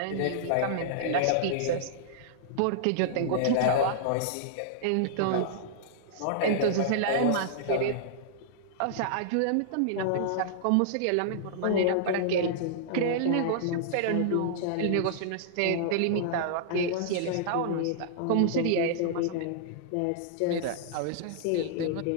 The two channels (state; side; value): different; both; correlation -0.02